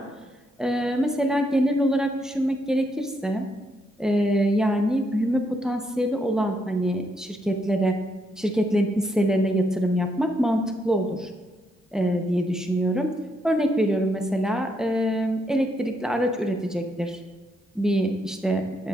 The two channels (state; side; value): normal; both; correlation 0.77